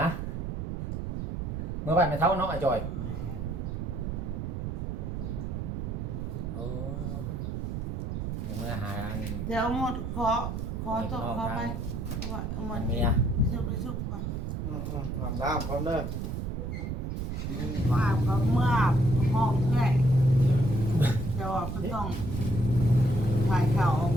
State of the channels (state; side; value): noise; right; rumble, 3 dB below the sound